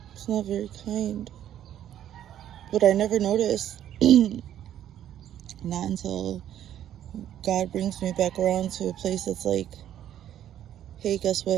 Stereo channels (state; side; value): quieter; left; 11.1 dB